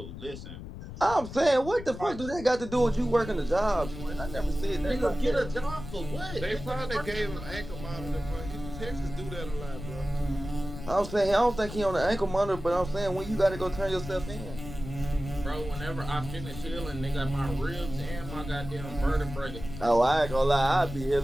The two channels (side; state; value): left; noise; rumble, 11 dB below the sound